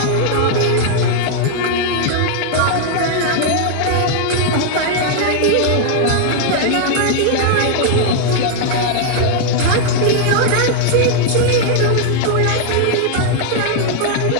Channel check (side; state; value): both; different; correlation -0.01